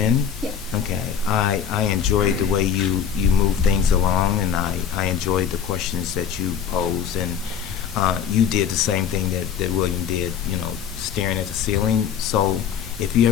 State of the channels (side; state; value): right; quieter; 8.1 dB